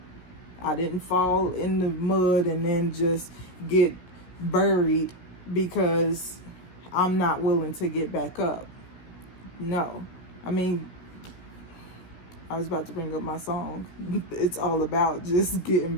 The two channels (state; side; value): late; right; 16 ms